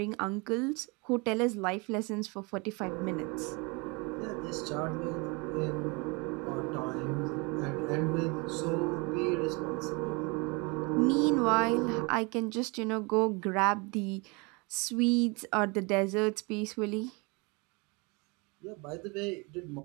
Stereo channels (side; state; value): left; quieter; 29.1 dB